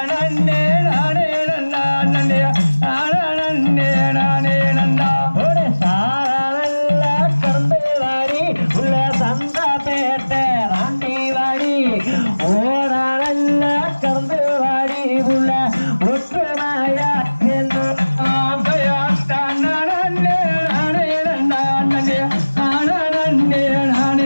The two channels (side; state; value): both; inverted; correlation -1.00